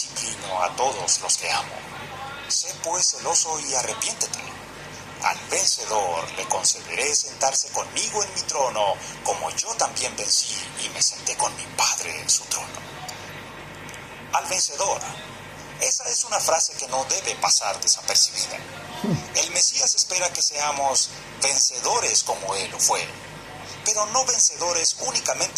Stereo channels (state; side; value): identical; both; correlation 1.00